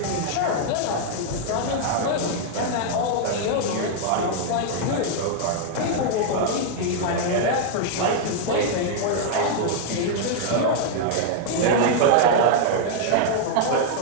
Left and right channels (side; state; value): both; different; correlation 0.00